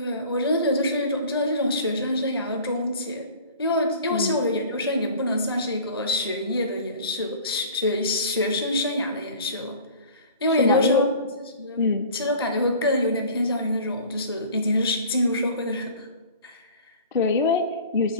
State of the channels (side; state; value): both; inverted; correlation -0.44